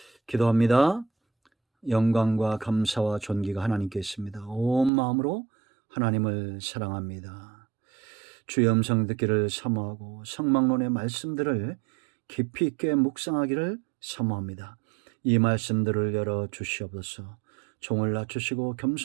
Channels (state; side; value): drops out; left; at 4.9 s